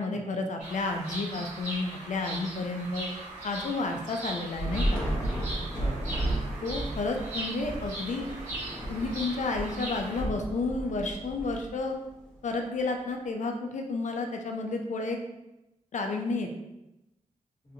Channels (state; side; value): normal; both; correlation 0.61